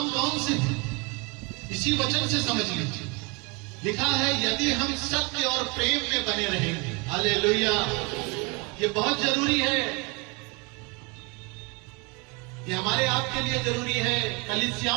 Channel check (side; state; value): left; quieter; 29.1 dB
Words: कौन से हैं? इसी वचन से समझ लीजिए। लिखा है, यदि हम सत्य और प्रेम में बने रहेंगे। हालेलुया। ये बहुत जरूरी है। ये हमारे आपके लिए जरूरी है,